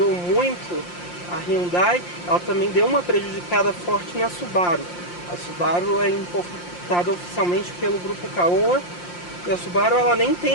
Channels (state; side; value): late; right; 5.7 ms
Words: muito a Hyundai, ela também deu uma prejudicada forte na Subaru. A Subaru é importada oficialmente pelo grupo Caoa, e a Subaru ela nem